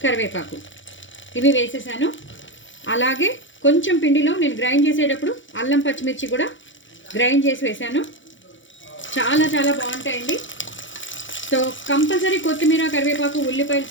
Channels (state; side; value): late; right; 0.56 ms